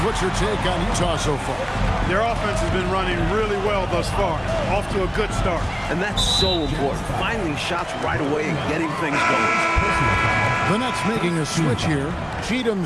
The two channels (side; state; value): both; identical; correlation 1.00